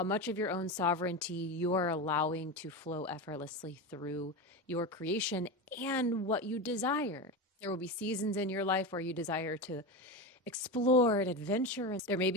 much of your own sovereignty you are allowing to flow effortlessly through your creation and what you desire. There will be seasons in your life where you desire to explore and adventure. There may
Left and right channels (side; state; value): both; normal; correlation 0.20